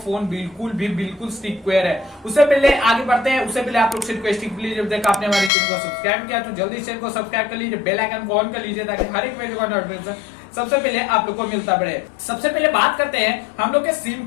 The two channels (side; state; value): right; drops out; at 5.5 s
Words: बिल्कुल सिक्योर है। उससे पहले आगे बढ़ते हैं, उससे पहले आप लोग से रिक्वेस्ट प्लीज, जब तक आपने हमारे चैनल को सब्सक्राइब किया तो जल्दी चैनल को सब्सक्राइब कर लीजिए, बेल आइकन को ऑन कर लीजिए ताकि हर एक वीडियो का नोटिफिकेशन सबसे पहले आप लोग को मिलता बढ़े। सबसे पहले बात करते हैं हम लोग के सिम